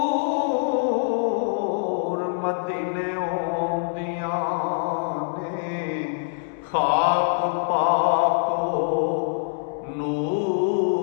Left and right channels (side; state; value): right; silent; 62 dB below the other